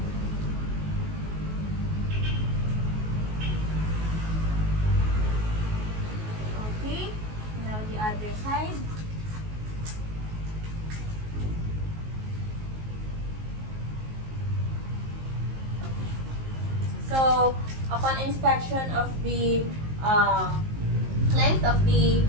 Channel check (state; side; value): late; left; 19 ms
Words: Okay, now the other side. So, upon inspection of the length of the